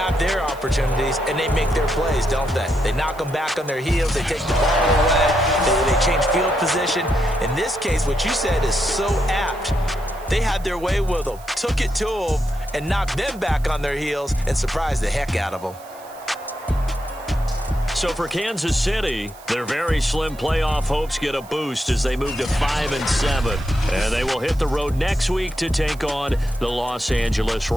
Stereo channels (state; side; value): noise; right; hiss, 22 dB below the sound